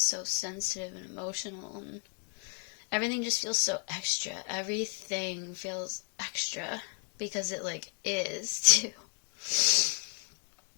so sensitive and emotional, and everything just feels so extra. Everything feels extra because it like is too.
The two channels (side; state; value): right; quieter; 35.8 dB